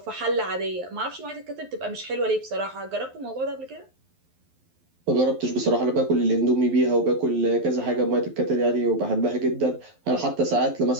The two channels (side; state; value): left; late; 11 ms